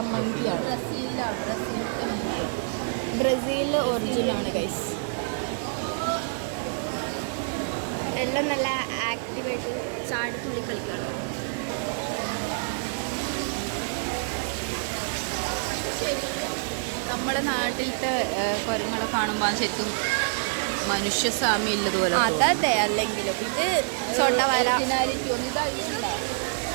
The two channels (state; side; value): silent; left; digital silence